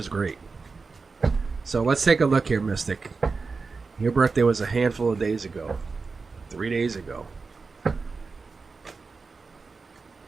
great. So let's take a look here, Mystic. Your birthday was a handful of days ago. 3 days ago.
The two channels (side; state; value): left; quieter; 4.4 dB